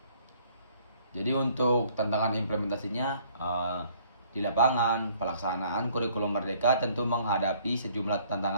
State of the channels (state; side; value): inverted; both; correlation -0.60